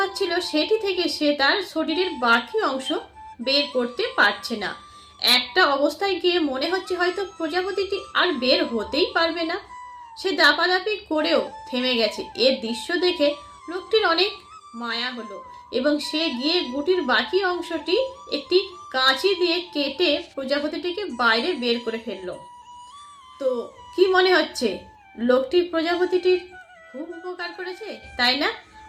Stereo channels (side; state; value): both; identical; correlation 1.00